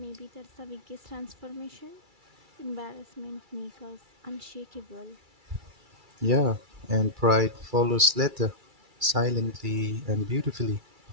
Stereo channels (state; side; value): late; left; 2.3 ms